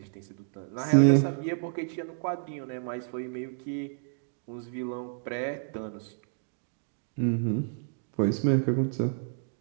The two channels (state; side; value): silent; left; digital silence